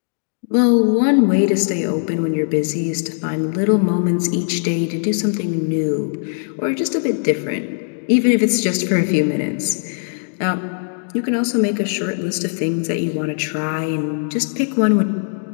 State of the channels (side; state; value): right; silent; 66 dB below the other